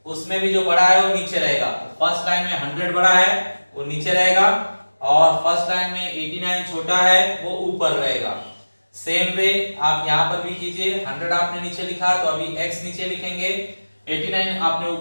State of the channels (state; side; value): inverted; both; correlation -1.00